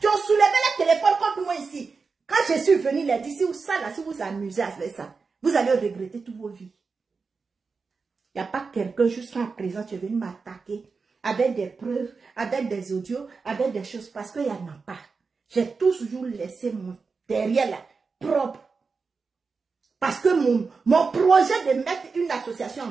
qui ont soulevé les téléphones contre moi ici, quand je suis venu les dire, si vous amusez avec ça, vous allez regretter toute vos vies. Il n'y a pas quelqu'un jusqu'à présent qui est venu m'attaquer avec des preuves, avec des audios, avec des choses, parce qu'il n'y en a pas. J'ai toujours laissé mon derrière là, propre. Parce que mon projet de mettre une association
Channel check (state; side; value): quieter; left; 4.7 dB